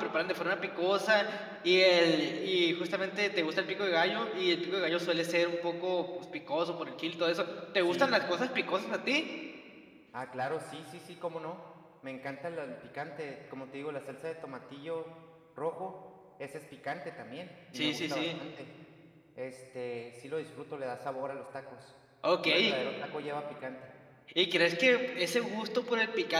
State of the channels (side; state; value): both; identical; correlation 1.00